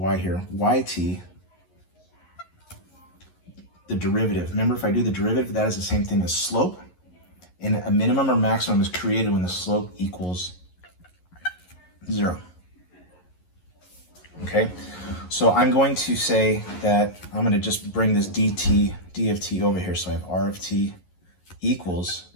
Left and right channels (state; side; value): late; right; 11 ms